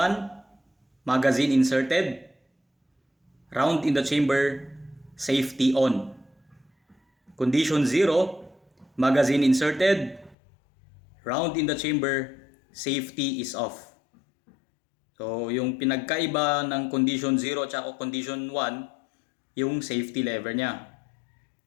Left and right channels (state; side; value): drops out; right; at 10.4 s